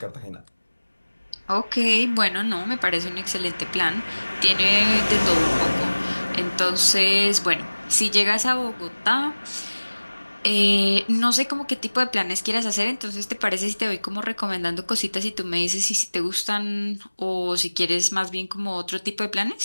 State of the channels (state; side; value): inverted; both; correlation -1.00